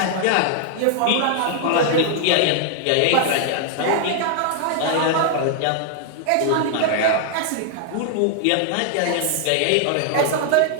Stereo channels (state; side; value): different; both; correlation 0.00